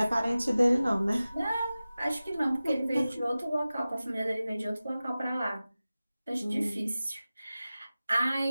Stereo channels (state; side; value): inverted; both; correlation -0.96